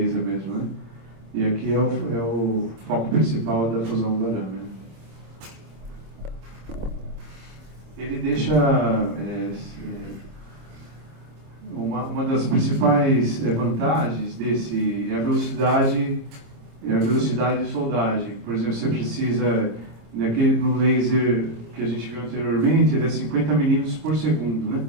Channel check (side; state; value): left; late; 26 ms